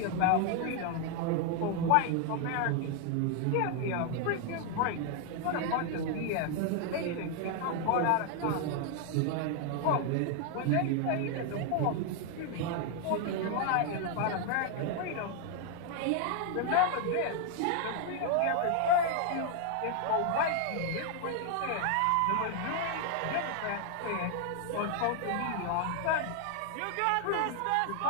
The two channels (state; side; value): different; both; correlation 0.00